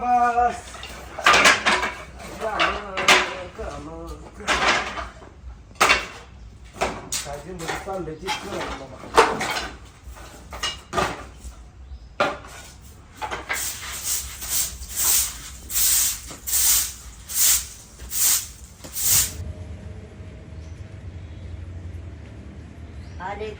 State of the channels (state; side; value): identical; both; correlation 1.00